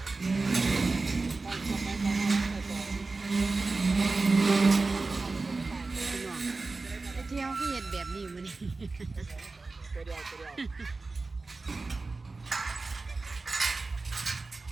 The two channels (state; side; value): quieter; left; 3.7 dB